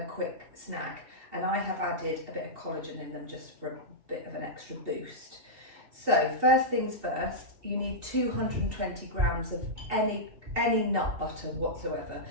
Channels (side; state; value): left; late; 2.7 ms